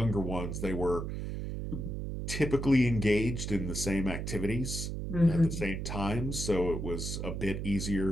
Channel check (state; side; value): noise; right; hum, 4 dB below the sound